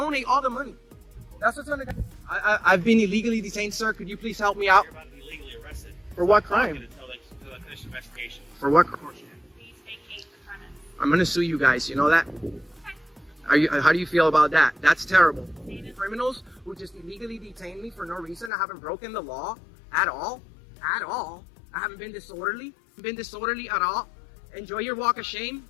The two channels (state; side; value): drops out; right; at 18.5 s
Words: all the money. That's what's gonna. I've been illegally detained, sir. Could you please help me out? You're about to be legally arrested. For what crime? Until they finish the investigation. For what crime? Please vacate the premise. I'm gonna sue you guys. You know that? How do you feel about that? That's terrible. Criminals who just illegally detain me for no reason. I haven't broken the law at all. At all. I haven't been disorderly. At all. Enjoy your walk of shame.